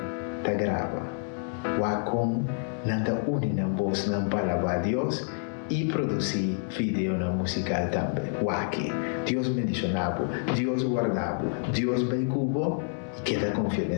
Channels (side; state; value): right; silent; digital silence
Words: ta grava. O con nada unina voz na palabra a Dios y producir video na musical también. O aquí Dios bendicionado, Dios guardado, Dios vai cubo y queda confiado en